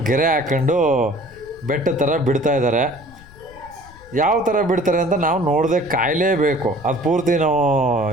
ಗೆರೆ ಹಾಕ್ಕೊಂಡು ಬೆಟ್ಟ ಥರ ಬಿಡ್ತಾ ಇದ್ದಾರೆ. ಯಾವ ಥರ ಬಿಡ್ತಾರೆ ಅಂತ ನಾವು ನೋಡದೆ ಕಾಯಲೇಬೇಕು. ಅದು ಪೂರ್ತಿ ನಾವು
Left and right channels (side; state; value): left; noise; rumble, 22 dB below the sound